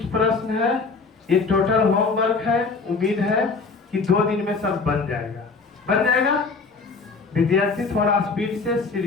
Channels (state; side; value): quieter; right; 4.4 dB